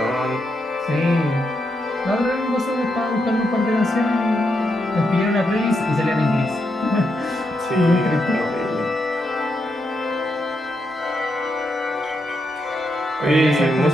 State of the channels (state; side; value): normal; both; correlation 0.82